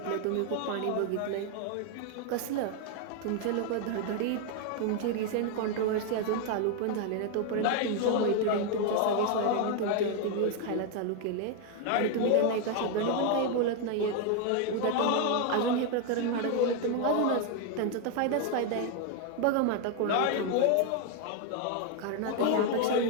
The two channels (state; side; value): different; both; correlation 0.01